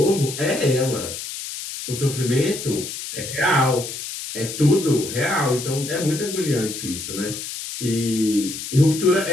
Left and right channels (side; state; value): left; noise; hiss, 8 dB below the sound